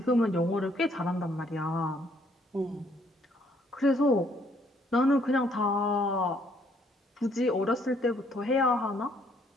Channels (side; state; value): both; normal; correlation 0.66